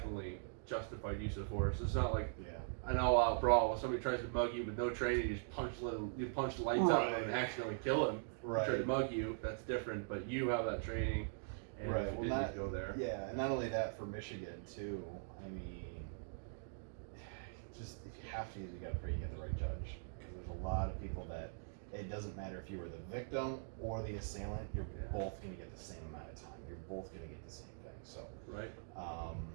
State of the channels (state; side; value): silent; left; digital silence